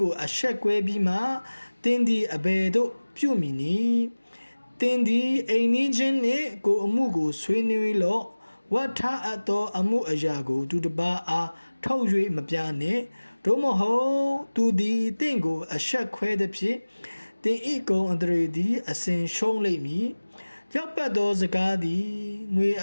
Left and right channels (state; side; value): inverted; both; correlation -1.00